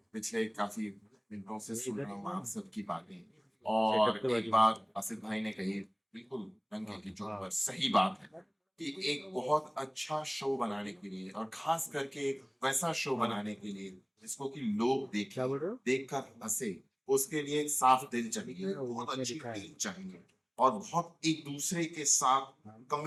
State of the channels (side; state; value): both; identical; correlation 1.00